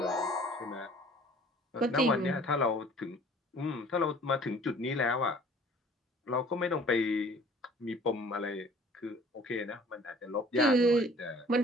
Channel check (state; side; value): normal; both; correlation 0.51